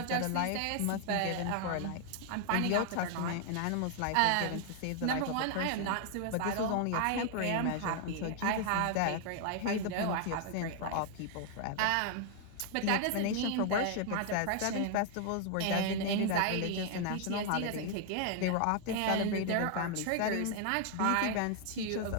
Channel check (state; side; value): different; both; correlation 0.00